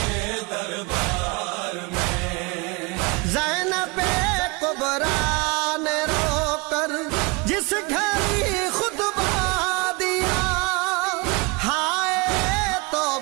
دربار میں۔ زینب کبریٰ نے رو کر جس گھڑی خطبہ دیا، ہائے تو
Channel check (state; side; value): quieter; left; 27.8 dB